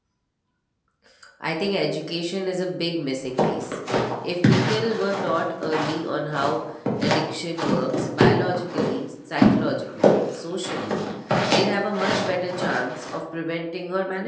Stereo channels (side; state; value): both; identical; correlation 1.00